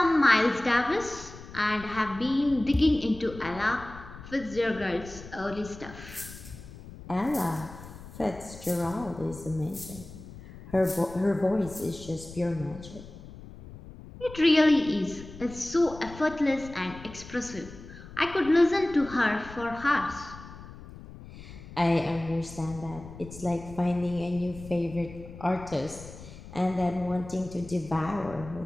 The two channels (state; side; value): noise; left; rumble, 15 dB below the sound